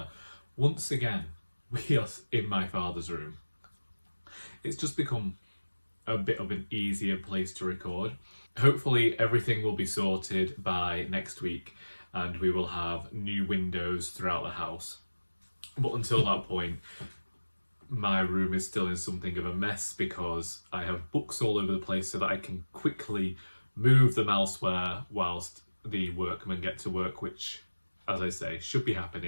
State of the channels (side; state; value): both; inverted; correlation -1.00